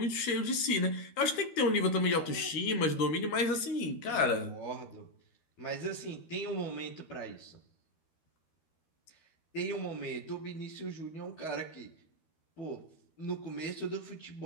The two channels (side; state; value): right; late; 12 ms